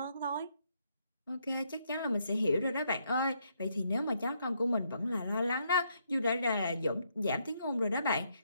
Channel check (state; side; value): inverted; both; correlation -0.75